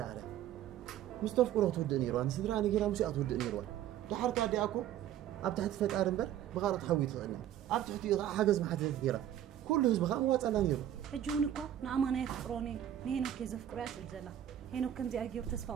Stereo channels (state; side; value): quieter; left; 11.2 dB